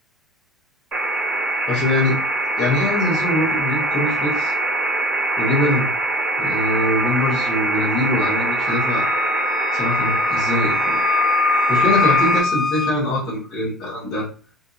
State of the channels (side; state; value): both; normal; correlation 0.45